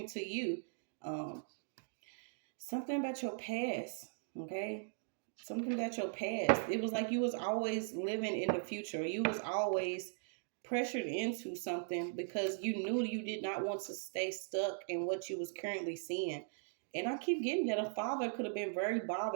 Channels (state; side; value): silent; left; digital silence